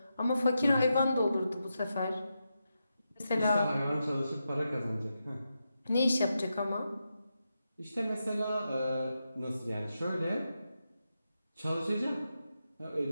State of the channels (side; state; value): both; inverted; correlation -0.87